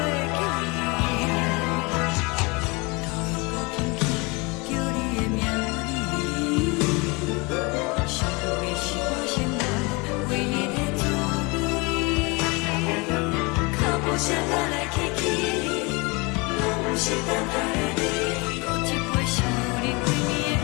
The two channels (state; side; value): quieter; right; 27.5 dB